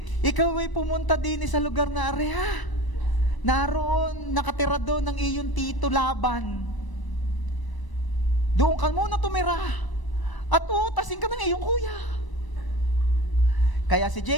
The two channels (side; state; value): right; late; 1.0 ms